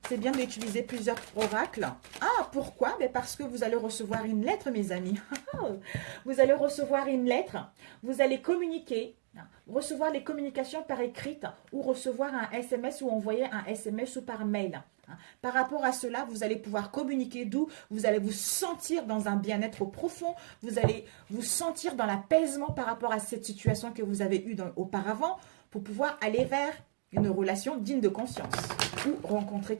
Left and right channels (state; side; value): silent; left; digital silence